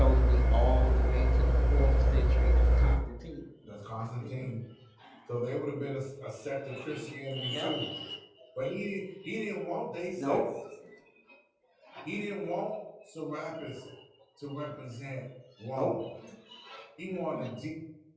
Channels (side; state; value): both; identical; correlation 1.00